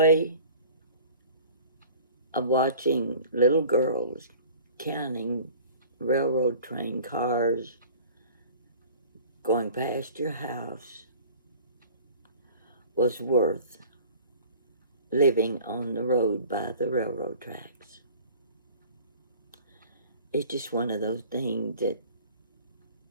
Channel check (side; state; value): both; inverted; correlation -0.45